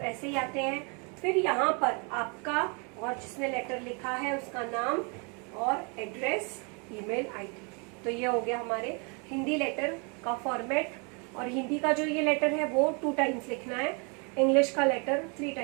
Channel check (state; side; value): quieter; left; 34.5 dB